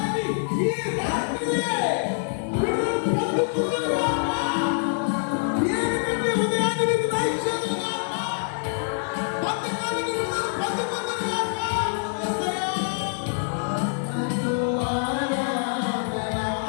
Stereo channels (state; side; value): silent; right; digital silence